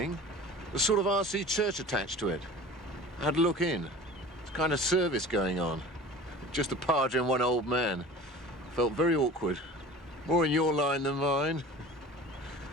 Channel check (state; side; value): normal; both; correlation 0.40